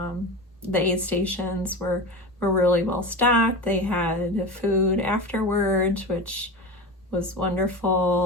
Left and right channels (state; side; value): normal; both; correlation 0.26